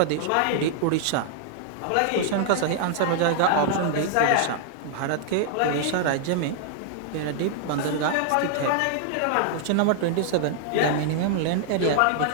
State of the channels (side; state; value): both; different; correlation -0.01